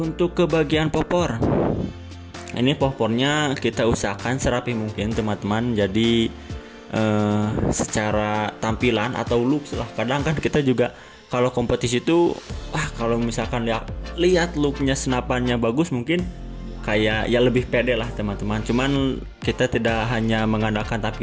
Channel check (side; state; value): both; identical; correlation 1.00